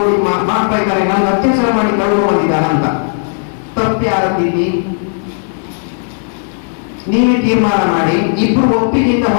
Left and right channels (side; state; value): right; silent; digital silence